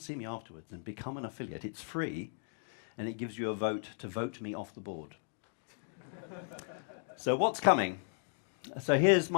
see me afterwards and become an affiliate. It's free, and it gives you a vote to vote me off the board. So what's coming? So here's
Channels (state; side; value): silent; right; digital silence